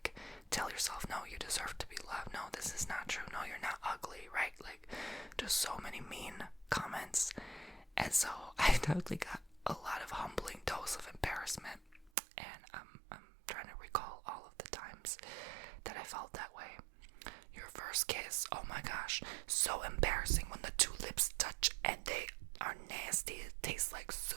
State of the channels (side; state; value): left; drops out; at 12.1 s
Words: tell yourself, no, you deserve to be loved. No, this is not true. No, you're not ugly, right? Like, just so many mean comments. And so I totally got a lot of humbling dose of embarrassment, and I'm trying to recall all of the times that I felt that way. Your first kiss, oh my gosh, so embarrassing when the two lips touch and they are nasty. It tastes like